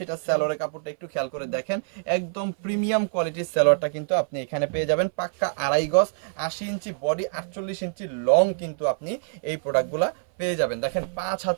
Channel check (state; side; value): silent; left; 57 dB below the other